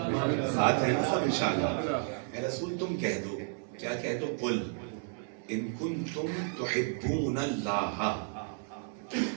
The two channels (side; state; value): left; silent; 56 dB below the other